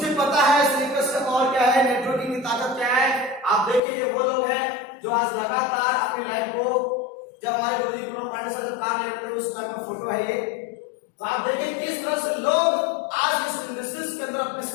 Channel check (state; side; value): drops out; right; at 3.8 s